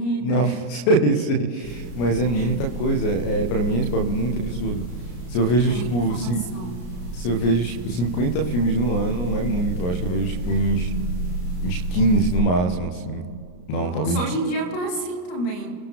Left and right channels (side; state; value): right; late; 33 ms